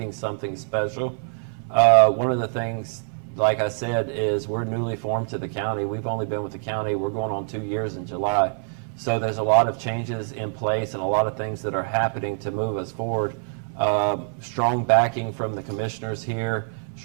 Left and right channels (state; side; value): silent; left; 57 dB below the other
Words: something special. One of the things, like I said, is we're newly formed to the county. We've only been with the county, we're going on 2 years in July. So there's a lot of changes in place and a lot of things that are happening to move us forward. Strong backing from the commissioners here,